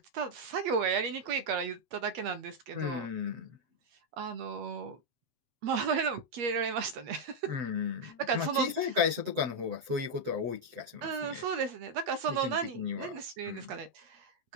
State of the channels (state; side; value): late; left; 7.8 ms